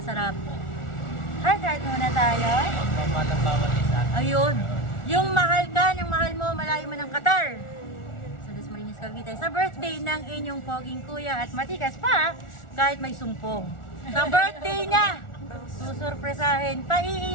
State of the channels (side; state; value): right; late; 1.4 ms